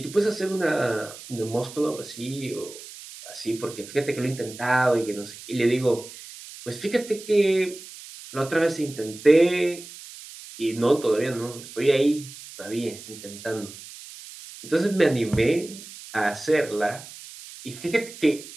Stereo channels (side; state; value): right; noise; hiss, 15 dB below the sound